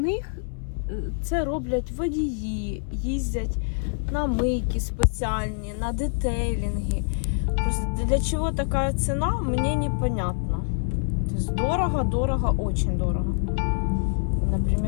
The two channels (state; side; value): silent; right; 61 dB below the other